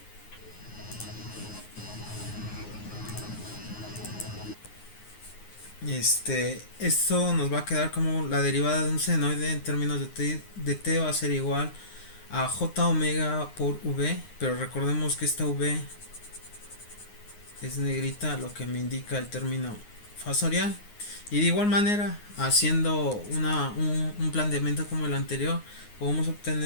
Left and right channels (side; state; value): right; late; 9.6 ms